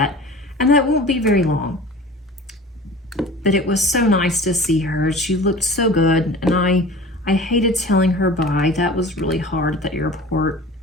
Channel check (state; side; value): normal; both; correlation 0.40